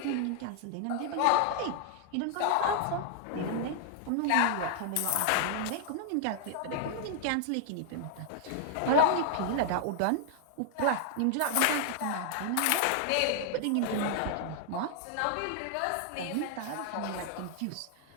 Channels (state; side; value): different; both; correlation 0.00